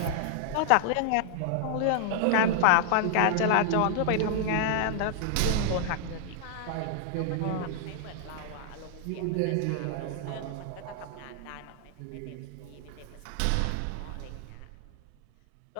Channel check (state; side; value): different; both; correlation 0.00